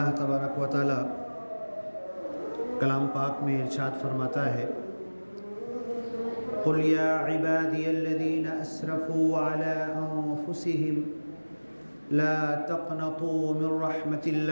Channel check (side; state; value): both; inverted; correlation -1.00